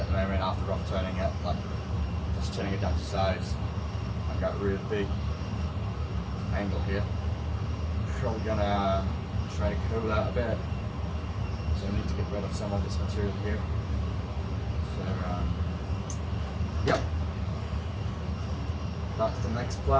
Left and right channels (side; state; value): both; identical; correlation 1.00